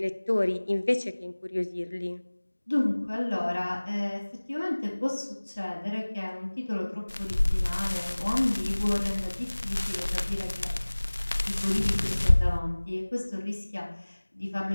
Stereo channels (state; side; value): inverted; both; correlation -1.00